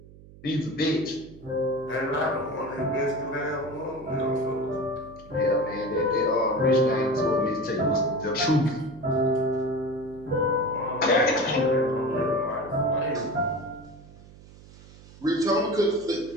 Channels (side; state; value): right; noise; hum, 21 dB below the sound